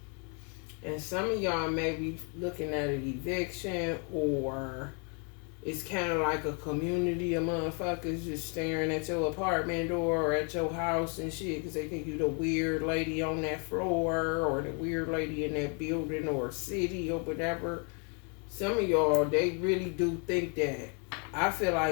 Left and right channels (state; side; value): quieter; right; 37.3 dB